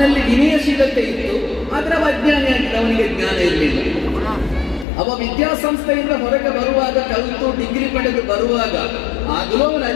ವಿನಯಶೀಲತೆ ಇತ್ತು, ಆದ್ರೆ ಅವ ಅಜ್ಞಾನಿಯಾಗಿದ್ದ, ಅವನಿಗೆ ಜ್ಞಾನ ಇರಲಿಲ್ಲ. ಅವ ವಿದ್ಯಾಸಂಸ್ಥೆಯಿಂದ ಹೊರಗೆ ಬರುವಾಗ, ಕಲಿತು ಡಿಗ್ರಿ ಪಡೆದು ಬರುವಾಗ ಆಗಲೂ ಅವನ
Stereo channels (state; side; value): drops out; right; at 4.9 s